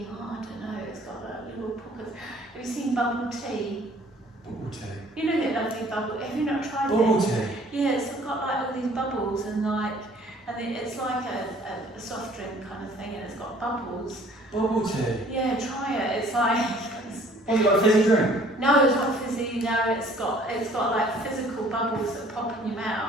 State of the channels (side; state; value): both; normal; correlation 0.55